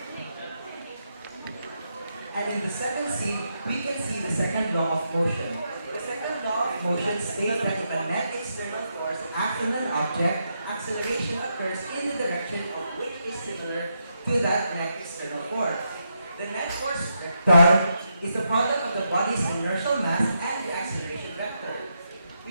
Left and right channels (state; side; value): inverted; both; correlation -0.82